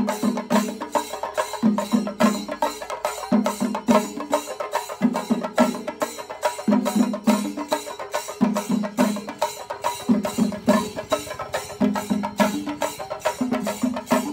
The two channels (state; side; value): identical; both; correlation 1.00